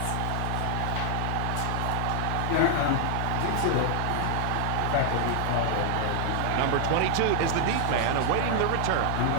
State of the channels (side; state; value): both; different; correlation 0.00